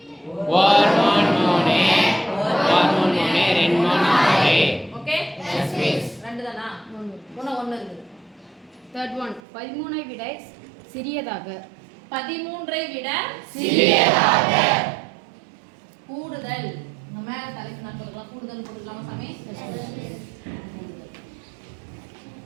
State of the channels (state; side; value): drops out; left; at 9.4 s